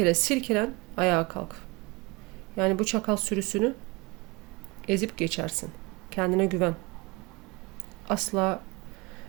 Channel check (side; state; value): left; quieter; 25.0 dB